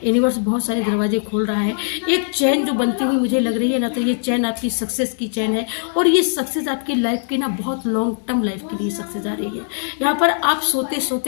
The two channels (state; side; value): silent; right; digital silence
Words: यूनिवर्स बहुत सारे दरवाजे खोल रहा है। एक चैन जो बनती हुई मुझे लग रही है ना, तो ये चैन आपकी सक्सेस की चैन है, और ये सक्सेस आपकी लाइफ की ना बहुत लॉन्ग टर्म लाइफ के लिए सक्सेस आ रही है। यहाँ पर आप सोते